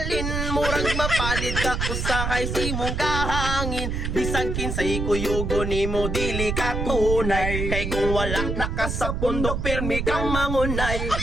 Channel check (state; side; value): noise; right; rumble, 2 dB below the sound